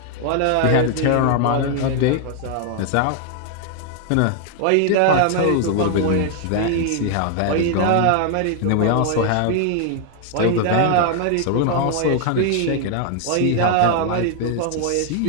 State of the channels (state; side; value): different; both; correlation 0.00